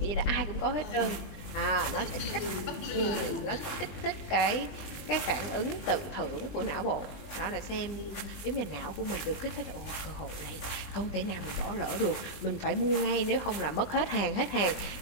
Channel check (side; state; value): right; late; 20 ms